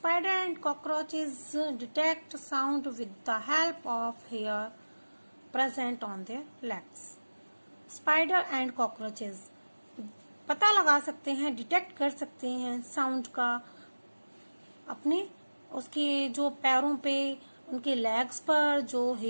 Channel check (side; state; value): both; inverted; correlation -1.00